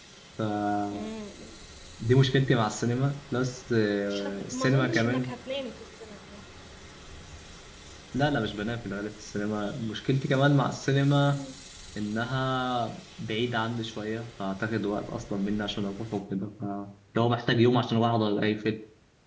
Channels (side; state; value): both; identical; correlation 1.00